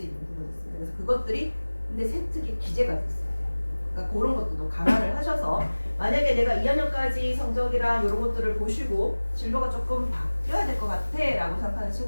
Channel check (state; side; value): inverted; both; correlation -1.00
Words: 있는 부분이 있습니다. 그래서 그것들이 근데 세특의 기재가 됐어요. 그러니까 그런 것도 감안을 하셔서, 만약에 내가 2학년까지 성적이랑 이런 것들을 보시고 진로가 조금 바뀌어야 될 것 같아 라고 생각하는